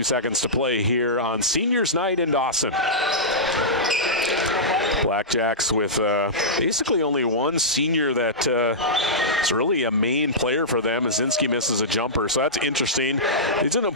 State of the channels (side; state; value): both; normal; correlation -0.15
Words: seconds to play here on Seniors Night in Dawson. Blackjacks with basically only one senior that is really a main player for them. Zinski misses a jumper, so that's interesting. It's an